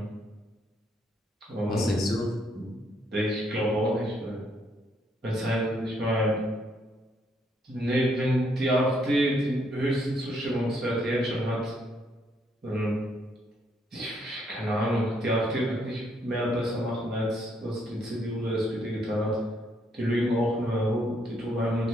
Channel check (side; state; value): both; normal; correlation 0.72